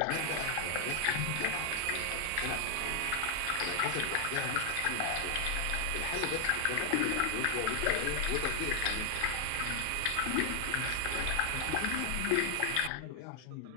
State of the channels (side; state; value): both; different; correlation 0.00